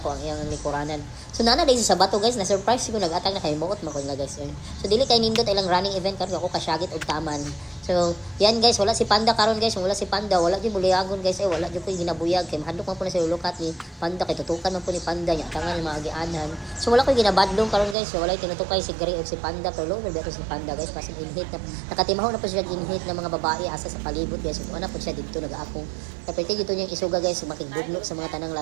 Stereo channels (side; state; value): left; drops out; at 17.9 s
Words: ang iyang likuranan. So nana din sa bato guys, na-surprise ko nag-atag na kay Moot makon na guys. So dili kay nindot ilang running event karon ako kasyagit og taman. So yan guys, wala si Panda karon guys, wala si Panda, wala di buliagon guys, wala di ko ginabuyag kay mahadlok man po na si Lulukat ni Panda kay tutukan man po ni Panda nya tangan mga agianan. So wala ko ginabadlong karon guys, so wala tinutukay si Gray og si Panda pero lower beto si Panda guys, pasig inhit na nakatimahaw na po siya inhit ng mga babae asa sa palibot guys. So ana po siya dito nag-aapong. Kapite dito niyang isuga guys, makigbugnok sa mga tanang